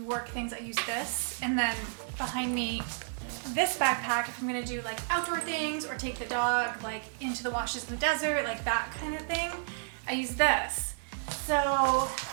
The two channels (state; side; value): silent; left; digital silence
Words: work things, I use this. And then behind me, this backpack, if I'm gonna do like outdoor things or take the dog like into the washes in the desert, like that kind of thing, I use this. So